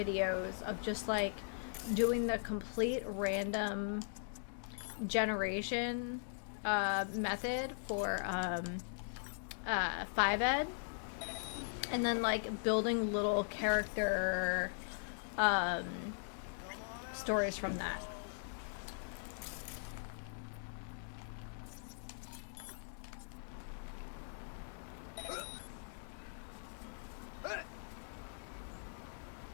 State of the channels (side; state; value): right; silent; digital silence